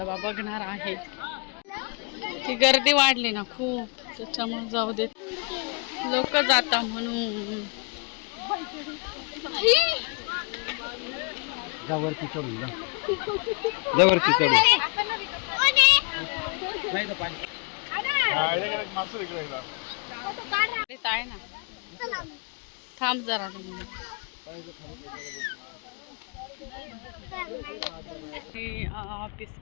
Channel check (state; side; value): quieter; right; 33.6 dB